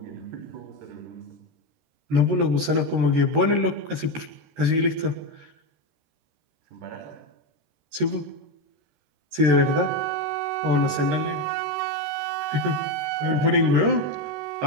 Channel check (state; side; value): late; left; 13 ms